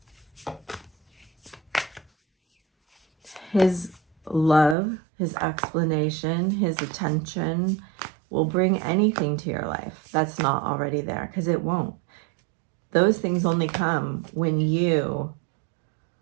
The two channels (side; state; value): left; drops out; at 4.8 s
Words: his love, his explanation, his attention will bring anything to your life that's not already there, because it won't. Those things only come when you